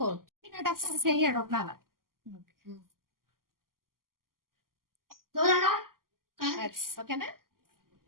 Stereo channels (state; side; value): late; left; 0.92 ms